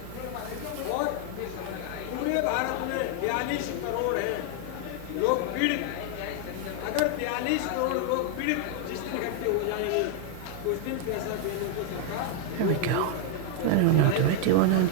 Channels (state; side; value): different; both; correlation 0.00